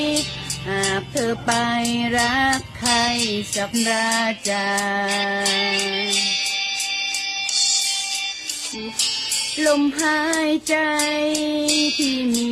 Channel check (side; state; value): both; identical; correlation 1.00